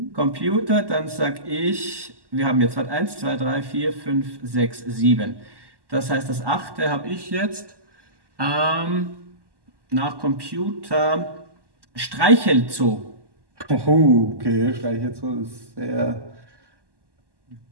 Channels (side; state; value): left; late; 1.1 ms